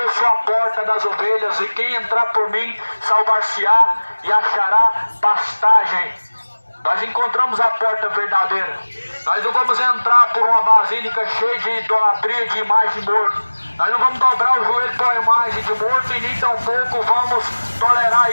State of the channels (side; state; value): both; inverted; correlation -1.00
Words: sou a porta das ovelhas, e quem entrar por mim salvar-se-á e achará pastagem. Nós encontramos a porta verdadeira. Nós não vamos entrar por uma basílica cheia de idolatria, de imagem de morto. Nós não vamos dobrar o joelho para a imagem de morto, e nem tampouco vamos tolerar